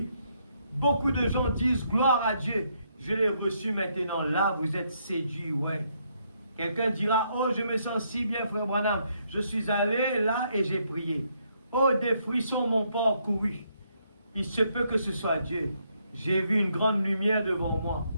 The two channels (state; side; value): inverted; both; correlation -0.74